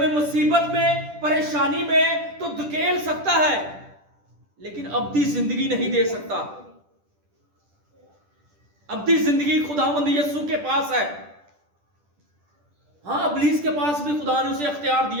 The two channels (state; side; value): late; left; 10 ms